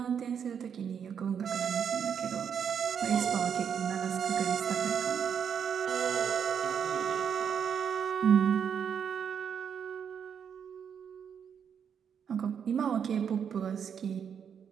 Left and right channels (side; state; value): left; quieter; 7.6 dB